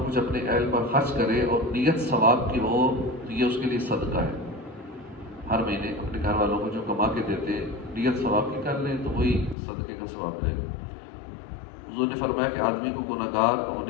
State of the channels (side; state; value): right; drops out; at 9.6 s